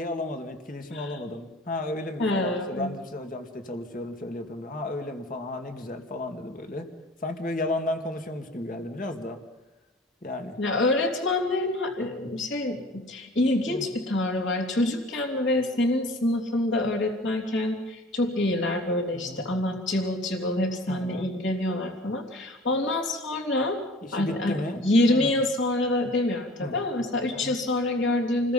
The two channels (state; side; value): normal; both; correlation 0.45